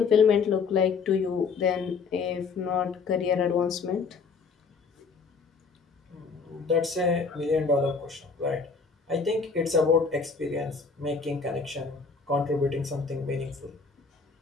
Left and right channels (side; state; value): right; quieter; 5.0 dB